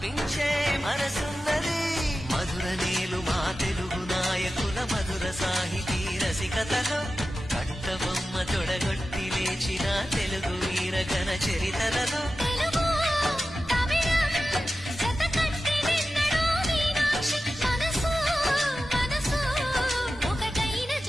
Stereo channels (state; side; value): normal; both; correlation 0.93